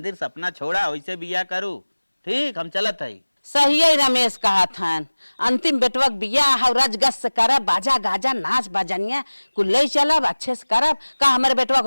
सपना छोड़ा, वैसे बियाह करू। ठीक हम चलत है। सही है रमेश कहा था, अंतिम बेटवक बियाह और रजगस से करब, बाजा गाजा नाच बजनिया कुल ले चलब, अच्छे से करब। का हमारे बेटवक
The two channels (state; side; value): inverted; both; correlation -1.00